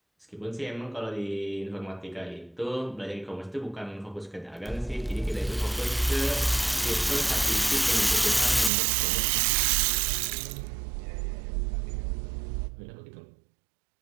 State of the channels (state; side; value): drops out; left; at 8.7 s